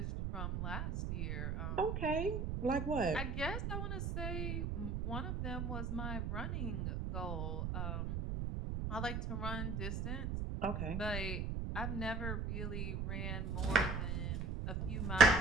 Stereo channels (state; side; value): noise; right; rumble, 1 dB below the sound